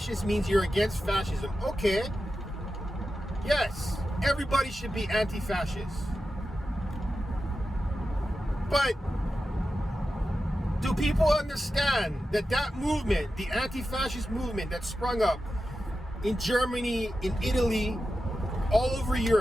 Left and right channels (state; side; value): normal; both; correlation 0.91